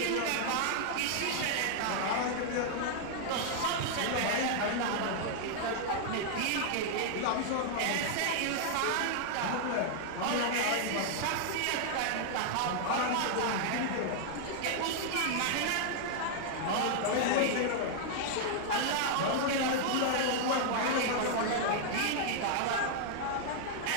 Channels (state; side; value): different; both; correlation -0.01